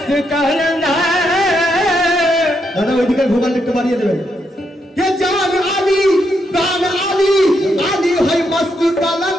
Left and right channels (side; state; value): both; normal; correlation 0.79